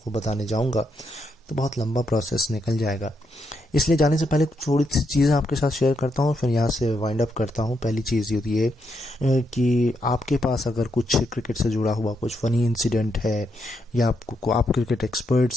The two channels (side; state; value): both; normal; correlation 0.80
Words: बताने जाऊंगा तो बहुत लंबा प्रोसेस निकल जाएगा। इसलिए जाने से पहले थोड़ी सी चीज़ें आपके साथ शेयर करता हूँ, फिर यहाँ से वाइंड अप करता हूँ। पहली चीज़ ये है कि आपके पास अगर कुछ क्रिकेट से जुड़ा हुआ कुछ फ़नी इंसिडेंट है, या आप क्रिकेट